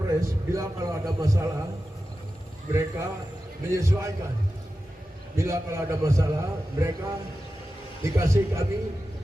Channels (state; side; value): normal; both; correlation 0.93